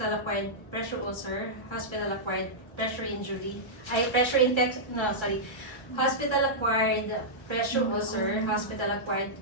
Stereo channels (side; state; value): right; late; 1.3 ms